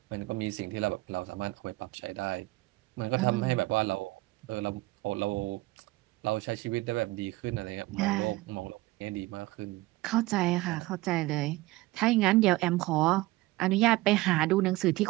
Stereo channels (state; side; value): quieter; left; 19.6 dB